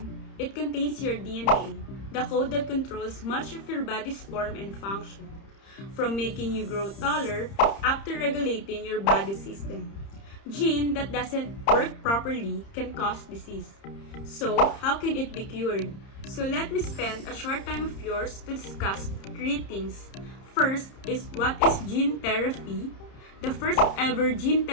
it contains your DNA, the code that controls much of your body's form and function, from making you grow taller up to regulating your body system. Gene that doesn't work properly can cause disease. So, how can it be cured? So let me spend a short time of yours to discuss three things. First is what is gene therapy, the first ever gene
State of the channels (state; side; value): late; right; 30 ms